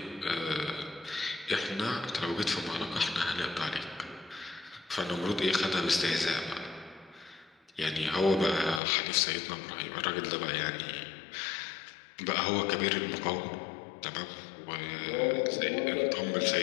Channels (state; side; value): drops out; right; at 8.8 s